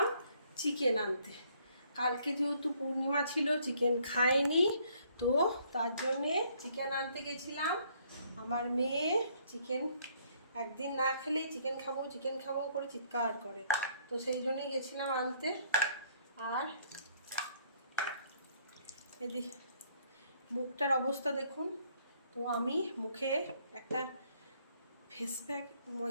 চিকেন আনতে। কালকে যেহেতু পূর্ণিমা ছিল, চিকেন খাইনি, তো তার জন্যে চিকেন আনতে গেছিলাম। আমার মেয়ে চিকেন একদিন না খেলেই চিকেন খাবো চিকেন খাবো করে চিৎকার করে, তো সেই জন্যই গেছিলাম আনতে। আর এদি মুখটার অবস্থা দেখুন। তো আমি মুখে একটা ফেস প্যাক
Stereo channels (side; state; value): both; inverted; correlation -0.65